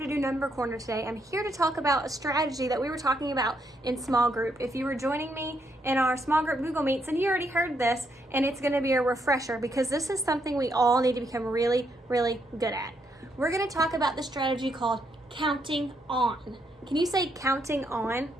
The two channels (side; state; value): both; normal; correlation 0.76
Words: do number corner today. I'm here to talk about a strategy that we were talking about in small group. If you were joining me in our small group Google Meets, and you already heard this, and it's going to be a refresher because this is something we all need to become really, really good at. We're going to talk about the strategy called counting on. Can you say counting on?